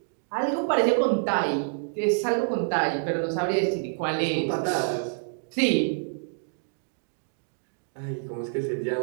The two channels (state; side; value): silent; left; digital silence